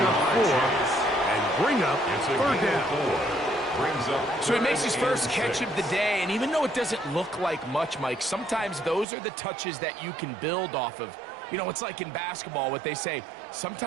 up 4 and bring up third down. So he makes his first catch of the day, and even though it doesn't look like much, Mike, sometimes those are the touches that you can build off of. You know, it's like in basketball, what they say,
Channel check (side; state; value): left; drops out; at 9.1 s